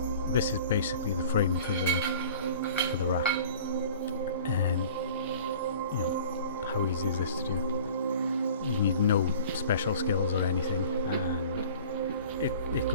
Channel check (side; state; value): both; inverted; correlation -0.45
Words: this is basically the frame for the rack. And you know, how easy is this to do? You need no special skills or anything, and it